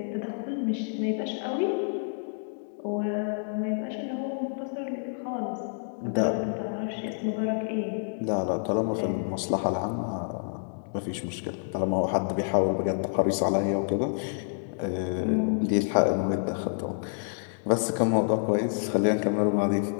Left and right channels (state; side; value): silent; right; digital silence